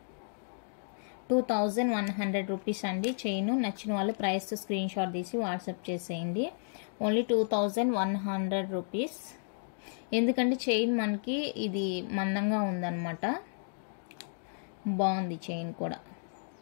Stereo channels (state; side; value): silent; right; digital silence